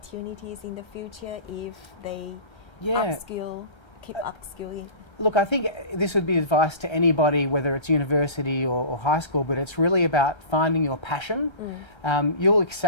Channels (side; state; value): right; late; 1.3 ms